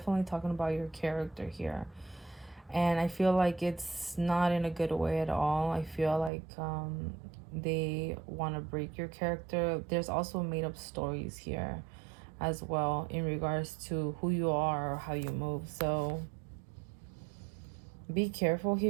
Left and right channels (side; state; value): left; drops out; at 6.3 s